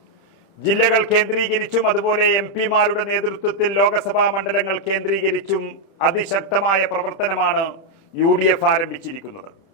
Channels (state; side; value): late; right; 31 ms